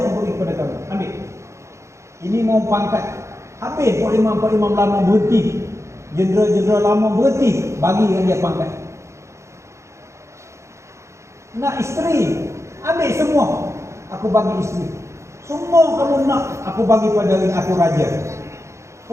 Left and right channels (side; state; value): left; late; 0.14 ms